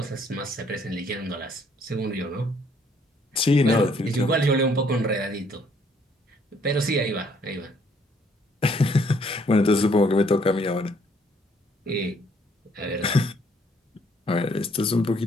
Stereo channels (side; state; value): both; normal; correlation 0.66